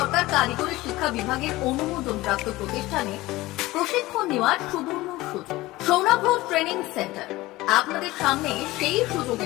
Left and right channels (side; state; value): right; quieter; 18.8 dB